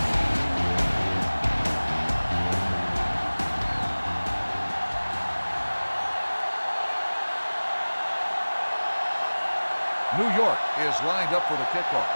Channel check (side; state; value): both; inverted; correlation -1.00